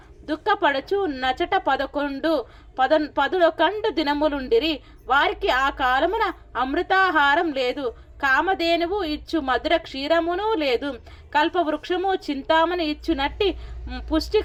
దుఃఖపడుచు నచట 11 దినములుండిరి. వారికి ఆ కాలమున అమృతాహారం లేదు, కామధేనువు ఇచ్చు మధుర క్షీరమును లేదు, కల్పవృక్షము చింతామణి ఇచ్చునట్టి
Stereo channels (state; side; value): identical; both; correlation 1.00